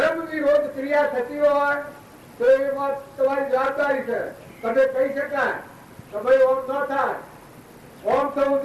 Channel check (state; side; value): identical; both; correlation 1.00